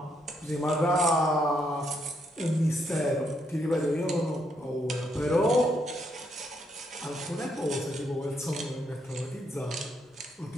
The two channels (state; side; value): normal; both; correlation 0.76